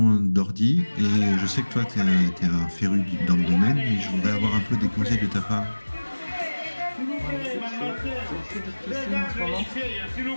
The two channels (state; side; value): inverted; both; correlation -1.00